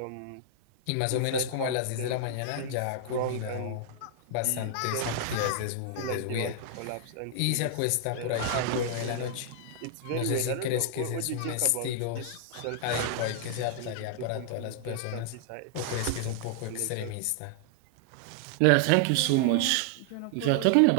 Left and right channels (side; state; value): both; different; correlation -0.01